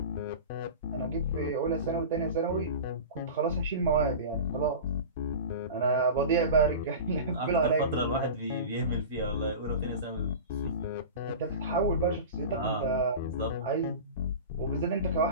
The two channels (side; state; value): both; inverted; correlation -0.31